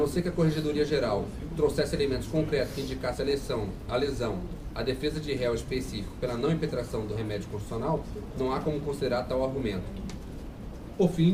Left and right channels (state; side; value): identical; both; correlation 1.00